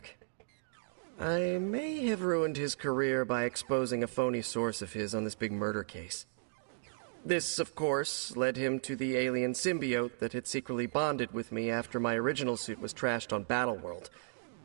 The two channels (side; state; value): left; silent; digital silence